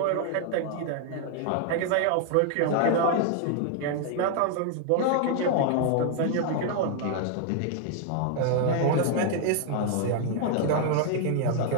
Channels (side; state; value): both; different; correlation 0.00